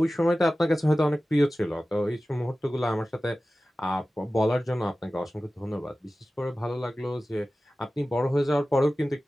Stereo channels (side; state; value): both; normal; correlation 0.96